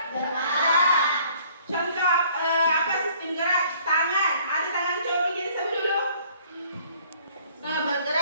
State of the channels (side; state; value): both; inverted; correlation -0.58